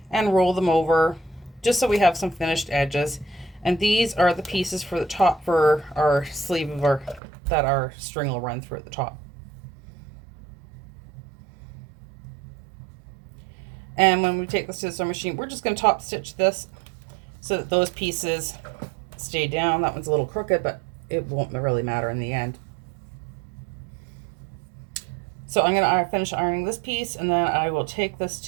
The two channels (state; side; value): drops out; left; at 7.2 s